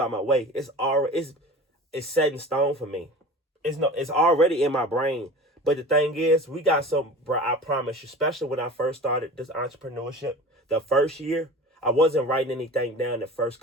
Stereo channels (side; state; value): both; normal; correlation 0.37